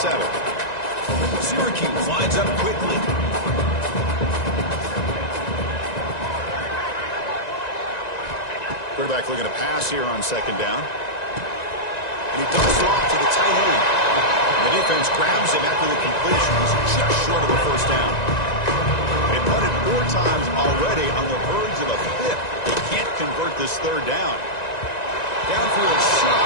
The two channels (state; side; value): late; right; 1.9 ms